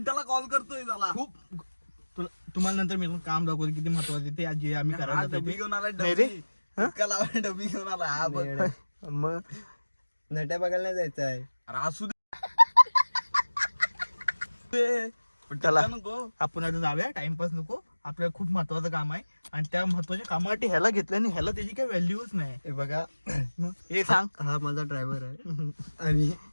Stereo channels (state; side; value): inverted; both; correlation -1.00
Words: कॉल करतोय त्याला. खूप. तुम्हाला नंतर मी काम दाखवतो किती महत्वाचं ते आज जे आम्ही करायला डबी घेऊन आला. नाही रे. डबी घेऊन आला. हा बघ मग नट्या बघायला नाही जायचं आहे. अरे असू दे. चला आपण आता जाऊया. टाइमपास नको. आपल्याला खूप महत्वाचं काम आहे आणि त्या महत्वाच्या कामासाठी ह्याला घेतलं आणि ह्याला त्याची काही व्हॅल्यूच नाही. हे बघा मग हे सांग. हा माझा ड्रायव्हर आहे आणि